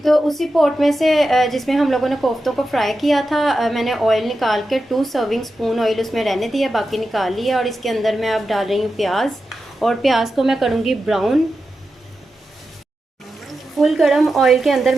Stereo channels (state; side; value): normal; both; correlation 0.90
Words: उसी पॉट में से जिसमें हम लोगों ने कोफ्तों को फ्राई किया था, मैंने ऑयल निकाल के 2 सर्विंग स्पून ऑयल उसमें रहने दिया, बाकी निकाल लिया। और इसके अंदर मैं अब डाल रही हूँ प्याज, और प्याज को मैं करूँगी ब्राउन। फुल गरम ऑयल के अंदर